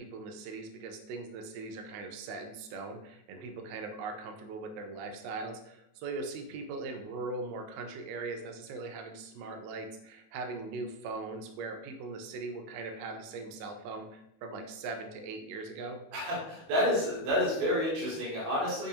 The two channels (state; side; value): late; left; 19 ms